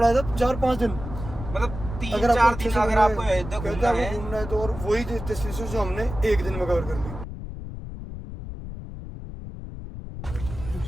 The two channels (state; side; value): noise; left; rumble, 10 dB below the sound